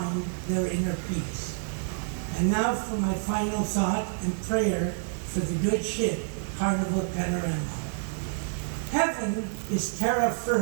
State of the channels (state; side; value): silent; left; 59 dB below the other